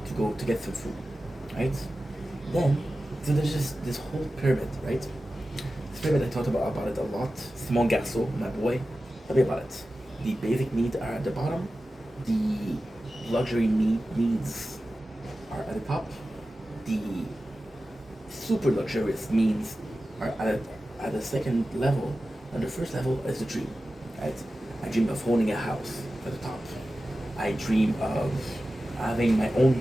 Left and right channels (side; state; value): both; normal; correlation 0.94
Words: go to get some food, right? Then, so there's just this whole pyramid, right? This pyramid, I talked about it a lot. Simon Garceau, my boy, tell me about it. The basic needs are at the bottom. The luxury needs are at the top. The super luxurious needs are at the second level. And the first level is the dream, right? I dream of owning a house at the top. I dream of having my own